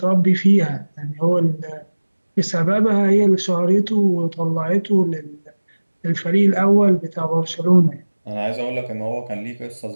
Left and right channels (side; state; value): both; inverted; correlation -1.00